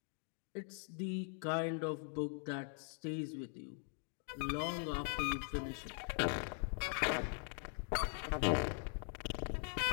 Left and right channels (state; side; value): silent; right; 50 dB below the other